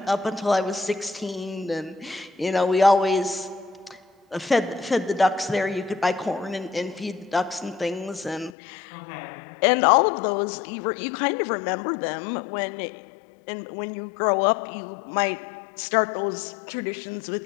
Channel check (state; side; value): drops out; right; at 8.6 s